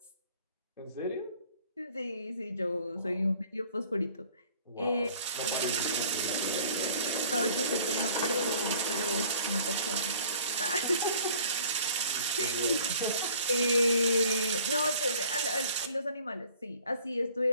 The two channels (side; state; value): both; inverted; correlation -0.52